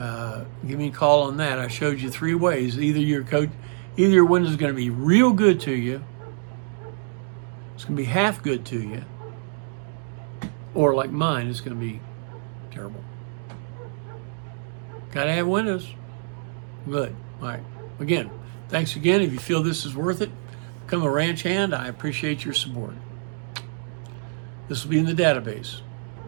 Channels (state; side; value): silent; left; 61 dB below the other